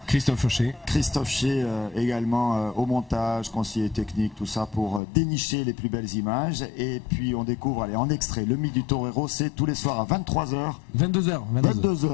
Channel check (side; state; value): right; drops out; at 5.0 s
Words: Christophe Fauché. Christophe Fauché également au montage, conseiller technique, tout ça pour dénicher les plus belles images. Et puis on découvre, allez, en extrait, le mythe du torero, c'est tous les soirs à 23h. 22h.